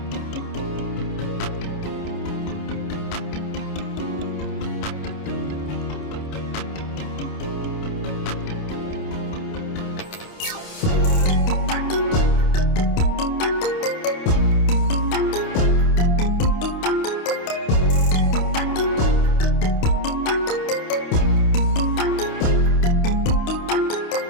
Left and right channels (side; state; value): right; late; 28 ms